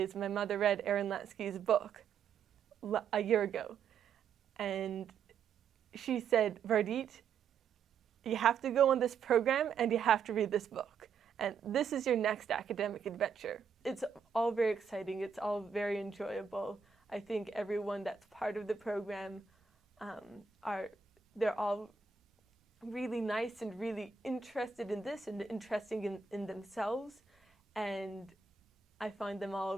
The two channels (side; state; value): left; quieter; 6.2 dB